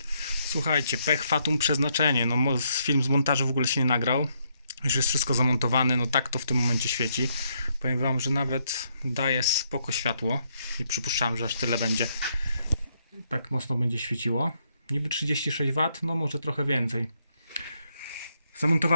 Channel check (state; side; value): inverted; both; correlation -0.75